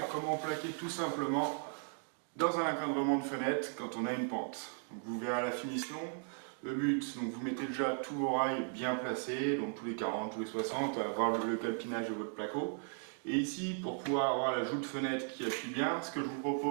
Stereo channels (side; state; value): left; silent; 53 dB below the other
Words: comment plaquer tout simplement dans un encadrement de fenêtre quand on a une pente. Donc vous verrez à la finition, le but, donc vous mettez déjà tous vos rails bien placés, donc tous les 40, tous les 60, à avoir le calpinage de votre placo. Et ici, pour pouvoir avoir la joue de fenêtre qui appuie bien, ce que je vous